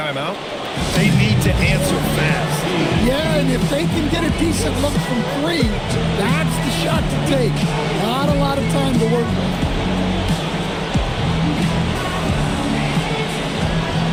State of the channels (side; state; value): both; identical; correlation 1.00